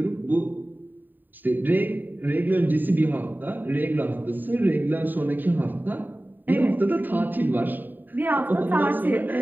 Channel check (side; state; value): left; late; 0.090 ms